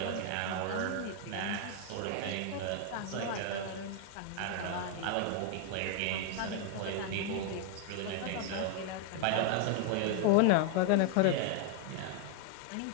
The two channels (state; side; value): different; both; correlation 0.00